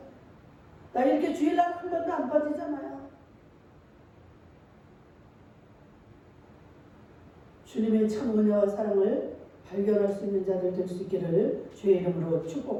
나 이렇게 주일날 한 번도 안 빠지잖아요. 주님의 참 은혜와 사랑을 발견할 수 있는 자들 될 수 있기를 주의 이름으로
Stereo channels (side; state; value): both; identical; correlation 1.00